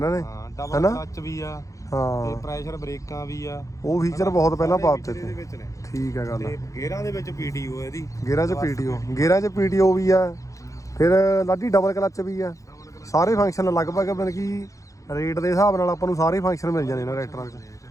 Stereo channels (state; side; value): late; right; 0.16 ms